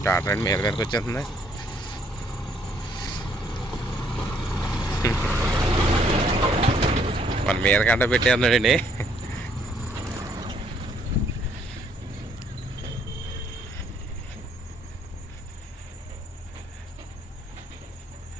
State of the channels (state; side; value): normal; both; correlation 0.66